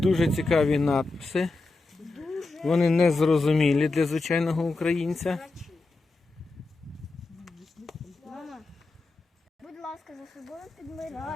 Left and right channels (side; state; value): right; quieter; 3.4 dB